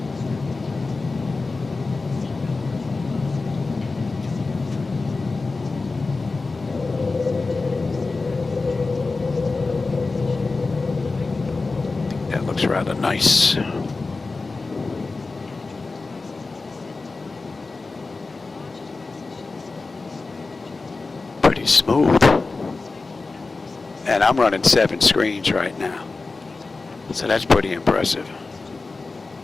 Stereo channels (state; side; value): quieter; right; 3.8 dB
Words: That looks rather nice. Pretty smooth. And I'm running 7 screens right now. So that's pretty impressive.